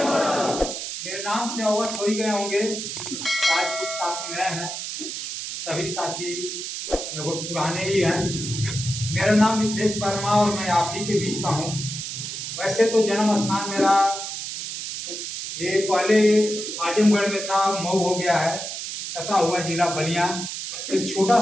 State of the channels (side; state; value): right; noise; hiss, 6 dB below the sound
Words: मोरल। मेरे नाम से अवगत हो ही गए होंगे। आज कुछ साथी नए हैं, सभी साथी लगभग पुराने ही हैं। मेरा नाम मिथिलेश वर्मा और मैं आप ही के बीच का हूँ। वैसे तो जन्म स्थान मेरा ये पहले आजमगढ़ में था, मऊ हो गया है, सटा हुआ जिला बलिया। एक छोटा